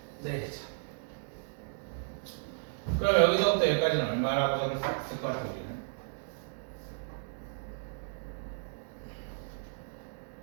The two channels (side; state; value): left; silent; digital silence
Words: 그럼 여기서부터 여기까지는 얼마라고 적을 수 있을 것 같아, 우리는?